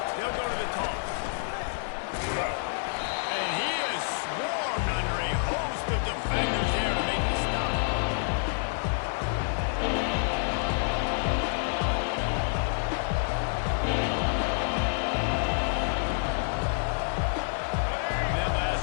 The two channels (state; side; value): silent; right; 59 dB below the other